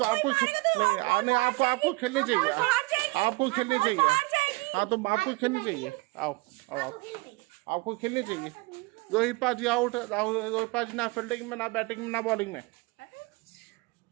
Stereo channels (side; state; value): left; quieter; 25.2 dB